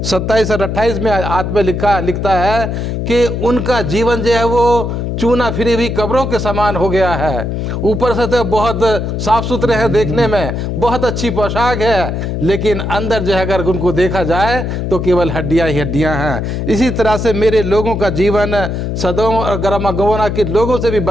27 और 28 में आत्मा लिखता है कि उनका जीवन जो है वो चूना फिरी हुई कब्रों के समान हो गया है। ऊपर से तो बहुत साफ सुथरे हैं, देखने में बहुत अच्छी पोशाक है, लेकिन अंदर जो है अगर उनको देखा जाए तो केवल हड्डियां ही हड्डियां हैं। इसी तरह से मेरे लोगों का जीवन सदोम और गमोरा के लोगों से भी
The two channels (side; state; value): left; noise; hum, 3 dB below the sound